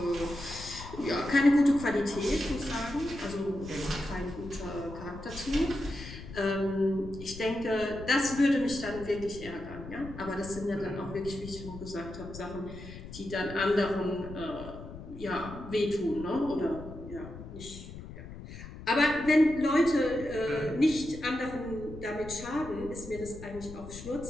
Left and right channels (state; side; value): noise; left; rumble, 13 dB below the sound